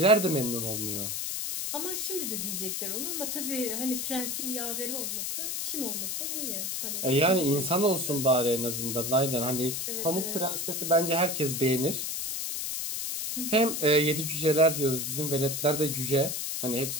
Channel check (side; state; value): left; noise; hiss, 2 dB below the sound